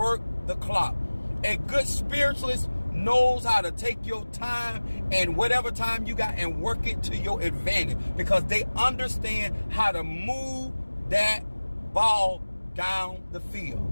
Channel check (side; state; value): both; inverted; correlation -1.00